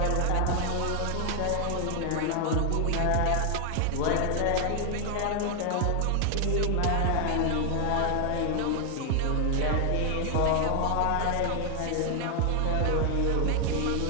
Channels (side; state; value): both; different; correlation 0.00